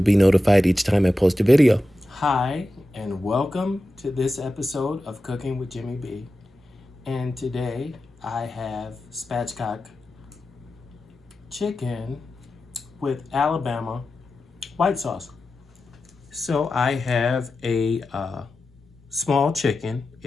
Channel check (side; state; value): both; normal; correlation 0.92